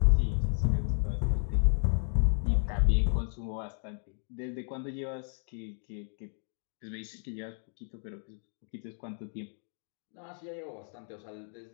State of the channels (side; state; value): right; silent; 56 dB below the other